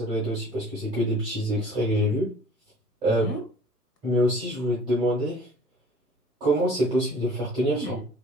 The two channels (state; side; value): normal; both; correlation 0.49